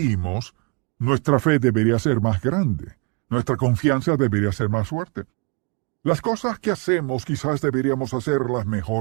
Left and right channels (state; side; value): quieter; left; 31.2 dB